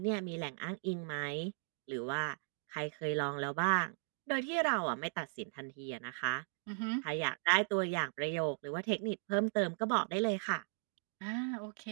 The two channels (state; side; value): silent; left; 53 dB below the other